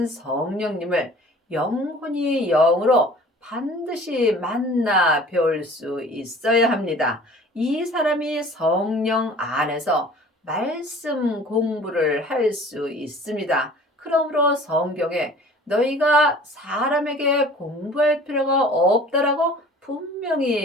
성령님을 영혼이 영으로 반드시 만나 배울 수 있어야 합니다. 이 사람이 성령 안에서 말씀 공부를 할 수 있습니다. 그러므로 성경에 너희가 사람에게 공부할 필요가 없다라고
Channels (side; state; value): both; normal; correlation 0.47